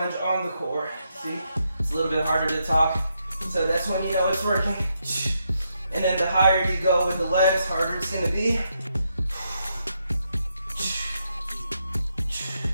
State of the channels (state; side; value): inverted; both; correlation -0.80